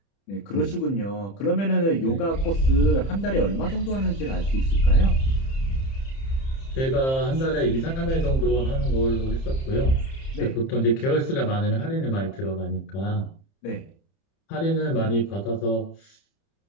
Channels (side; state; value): right; late; 30 ms